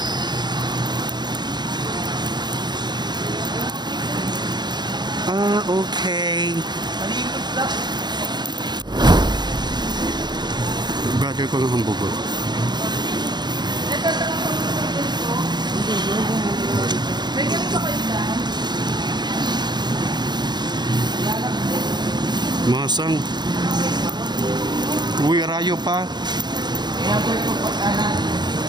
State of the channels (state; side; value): late; left; 0.21 ms